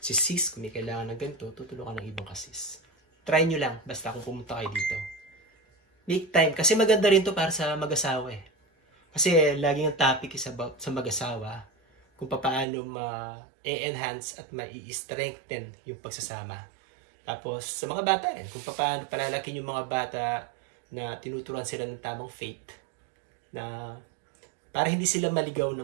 Si sis kung may kailangan ng ganito, tutulungan ng ibang ka-sis. Try nyo lang basta kung pumunta kayo dito. Make time kasi maganda rin to para sa mag-asawa eh. Kasi laging ang topic is about sa mag-asawa kung paano ma-enhance at ma-strengthen yung pagsasama. Tapos sa mga bata rin, kung paano palalakin yung mga bata na tinuturuan sila ng tamang faith na para hindi sila maligaw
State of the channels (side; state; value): left; drops out; at 12.7 s